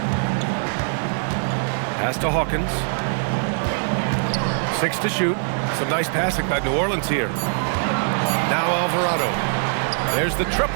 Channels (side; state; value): left; silent; digital silence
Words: Pass to Hawkins. 6 to shoot. Some nice passing by New Orleans here. Now Alvarado. There's the